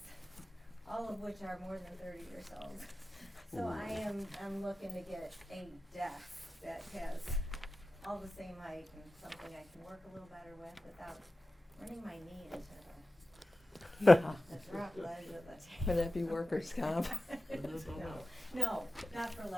all of which are more than 30 years old. So I'm looking to get a desk that has all the same height and something I can work a little better with without running my knee into the drop ledge of the table. Would that be workers' comp? No, not for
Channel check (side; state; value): both; normal; correlation 0.95